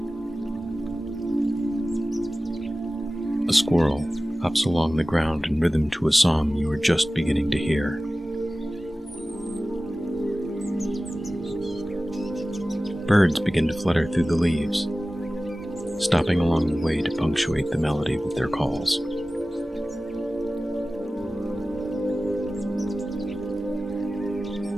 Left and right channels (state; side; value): normal; both; correlation 0.96